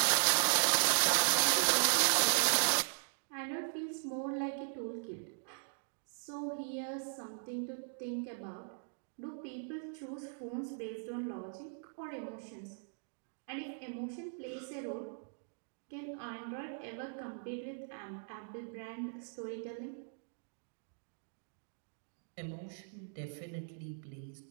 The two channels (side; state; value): left; silent; digital silence